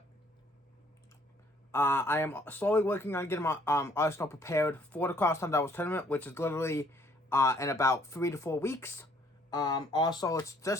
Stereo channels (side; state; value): both; normal; correlation 0.62